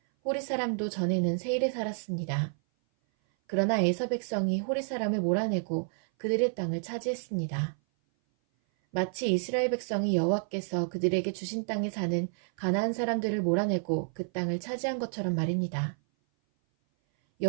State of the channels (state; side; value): silent; left; 57 dB below the other